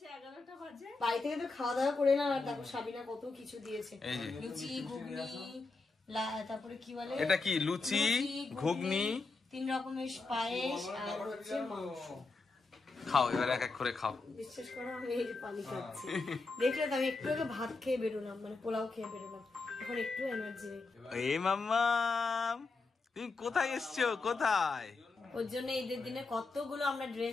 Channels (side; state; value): right; quieter; 3.9 dB